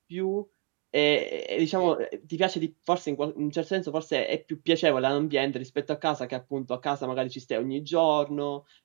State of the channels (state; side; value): quieter; left; 38.6 dB